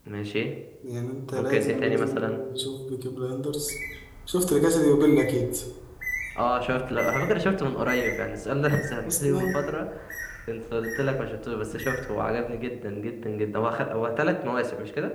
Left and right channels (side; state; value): both; identical; correlation 1.00